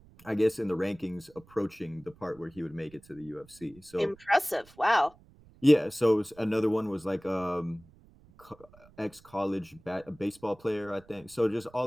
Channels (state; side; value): noise; right; rumble, 26 dB below the sound